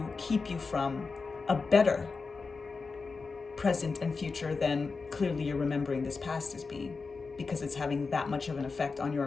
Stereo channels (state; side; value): quieter; right; 4.5 dB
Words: keep you from a better present and future than clearly you're remembering this past as being, because it's having that much of an effect on your